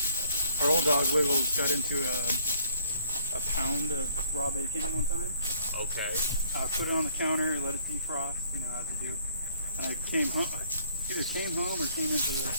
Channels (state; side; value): inverted; both; correlation -0.62